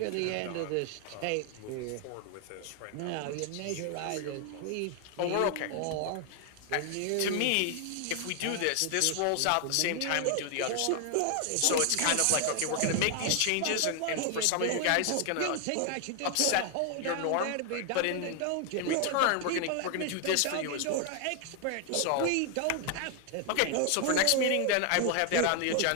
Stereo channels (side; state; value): both; different; correlation 0.00